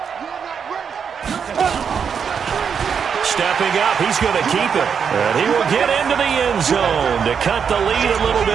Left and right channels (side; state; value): left; quieter; 6.9 dB